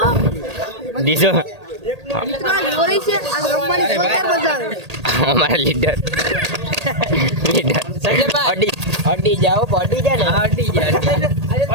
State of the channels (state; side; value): late; left; 1.8 ms